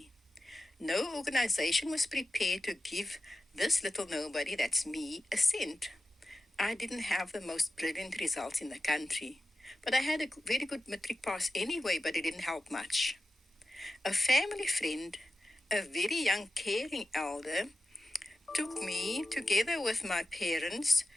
No organization was prepared to give this little nobody, that's me, a cent. I didn't have the most brilliant results in the country, but I had a very good matric pass anyway, but it didn't help much. A family friend, a very young caring elder, took me together with my parents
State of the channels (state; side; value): normal; both; correlation 0.92